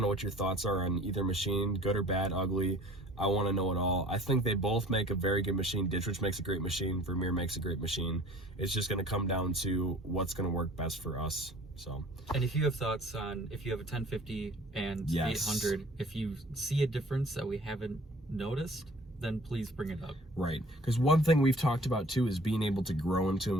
know what your thoughts are on either machine, good or bad, ugly. I want to know it all. I think they both make a very good machine. Ditch Witch makes a great machine. Vermeer makes a great machine. It's just going to come down to what's going to work best for us. So. And if you have thoughts on, if you have a 1050 and yes. 800, if you see a difference that we haven't noticed, then please bring it up. Right, because one thing we've talked about too is being able to grow into a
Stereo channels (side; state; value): both; normal; correlation 0.49